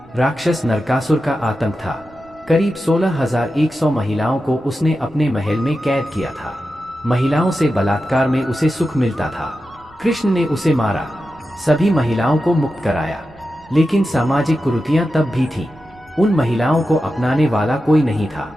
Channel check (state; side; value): noise; right; rumble, 27 dB below the sound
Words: राक्षस नरकासुर का आतंक था। करीब 16,100 महिलाओं को उसने अपने महल में कैद किया था। महिलाओं से बलात्कार में उसे सुख मिलता था। कृष्ण ने उसे मारा, सभी महिलाओं को मुक्त कराया, लेकिन सामाजिक कुरीतियां तब भी थीं। उन महिलाओं को अपनाने वाला कोई नहीं था।